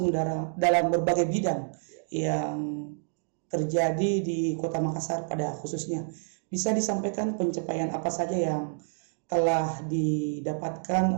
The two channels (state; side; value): silent; left; digital silence